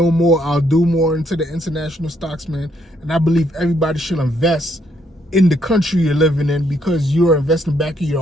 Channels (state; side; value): normal; both; correlation 0.72